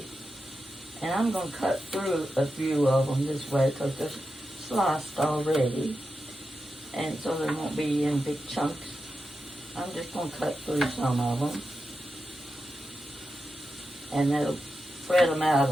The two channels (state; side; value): normal; both; correlation 0.89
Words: And I'm going to cut through a few of them this way because they're sliced already. And so they won't be in big chunks. I'm just going to cut through some of them. And that'll spread them out